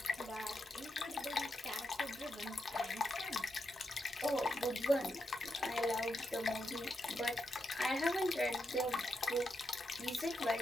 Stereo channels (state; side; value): normal; both; correlation 0.84